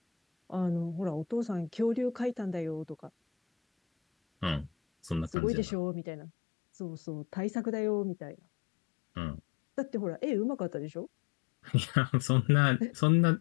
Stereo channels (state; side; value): drops out; right; at 5.4 s